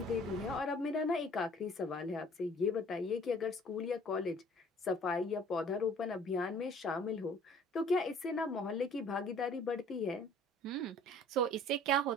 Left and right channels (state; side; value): normal; both; correlation 0.53